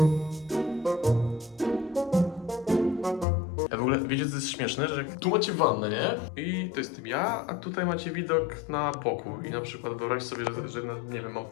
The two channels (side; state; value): right; drops out; at 3.2 s